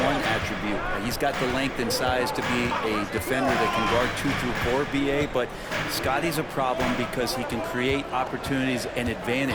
attribute. He's got the length and size to be a defender that can guard 2 through 4, BA, but Scotty's a problem because he can create opportunities and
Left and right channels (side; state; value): both; identical; correlation 1.00